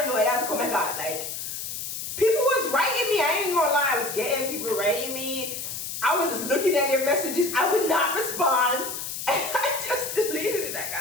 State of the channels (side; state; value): left; noise; hiss, 6 dB below the sound